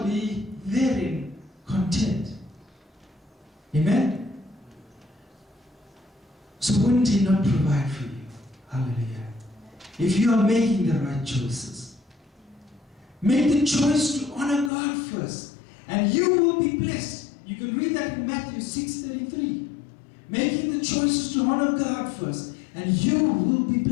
be therein content. Amen? So wouldn't he not provide for you? Hallelujah. If you are making the right choices. Make the choice to honor God first, and you will be blessed. You can read that in Matthew 6:33. Making the choices to honor God first, and you will be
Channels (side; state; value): right; drops out; at 14.7 s